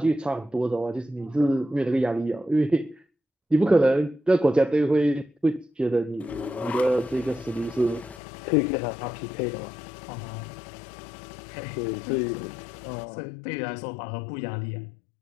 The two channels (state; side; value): drops out; right; at 8.2 s